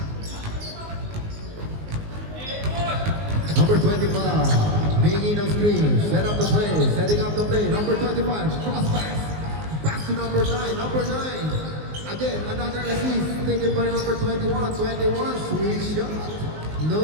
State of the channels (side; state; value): left; late; 19 ms